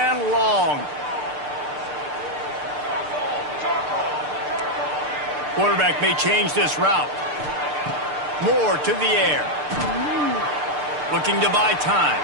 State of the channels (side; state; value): left; late; 6.7 ms